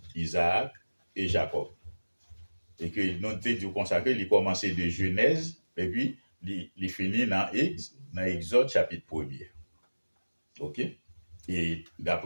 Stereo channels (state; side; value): inverted; both; correlation -1.00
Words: Isaac et Jacob. Et que nous avons consacré, il commençait de Genèse, et puis il finit dans Exode chapitre 1er. OK? Et